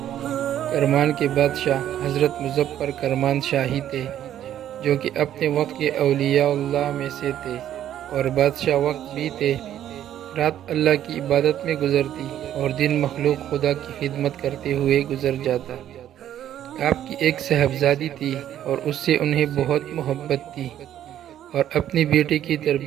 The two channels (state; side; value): quieter; left; 11.3 dB